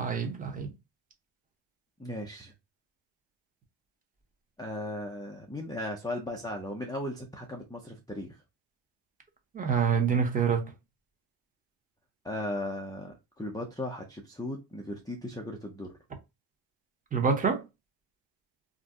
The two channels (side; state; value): left; quieter; 3.9 dB